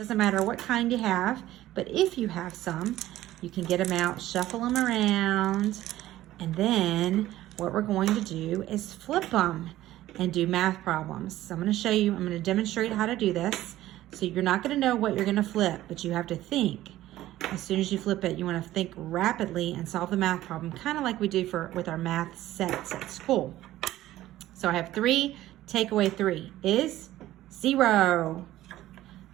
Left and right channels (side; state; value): left; quieter; 14.8 dB